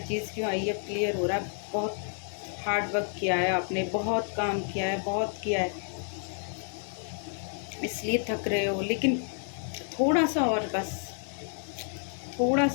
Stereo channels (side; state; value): right; silent; 58 dB below the other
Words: क्यों आई, अब क्लियर हो रहा है। बहुत हार्ड वर्क किया है आपने, बहुत काम किया है, बहुत किया है, इसलिए थक रहे हो। लेकिन थोड़ा सा और, बस थोड़ा